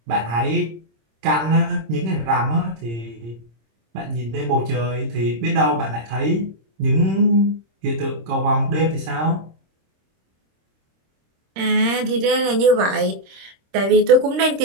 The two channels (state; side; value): late; left; 26 ms